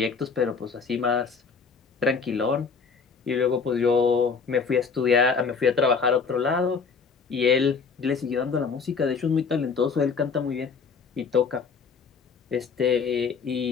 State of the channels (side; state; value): right; quieter; 5.4 dB